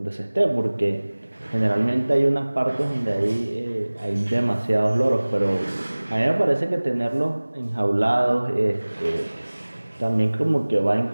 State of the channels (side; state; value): both; inverted; correlation -1.00